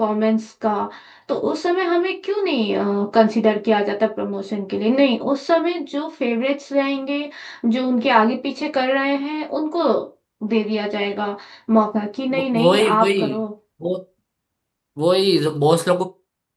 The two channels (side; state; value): both; identical; correlation 1.00